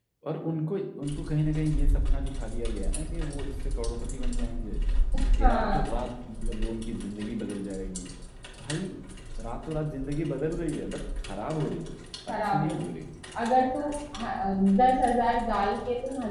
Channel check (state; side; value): identical; both; correlation 1.00